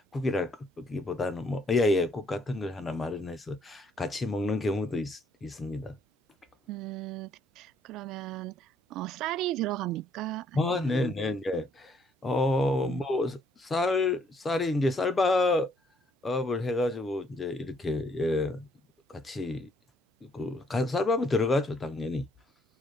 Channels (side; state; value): both; normal; correlation 0.67